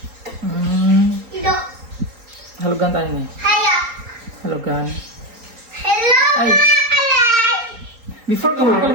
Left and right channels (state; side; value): late; left; 4.4 ms